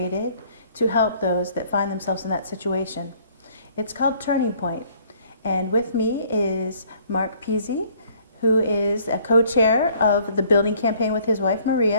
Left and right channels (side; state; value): both; inverted; correlation -0.60